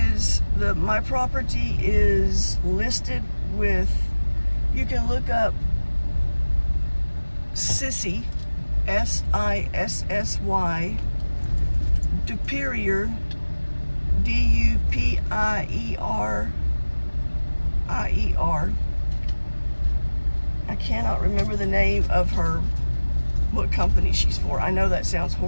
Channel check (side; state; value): both; inverted; correlation -1.00